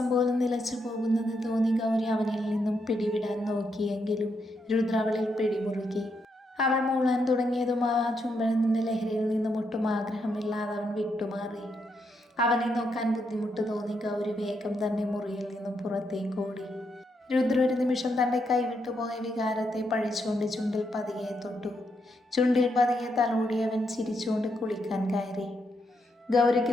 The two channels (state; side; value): normal; both; correlation 0.80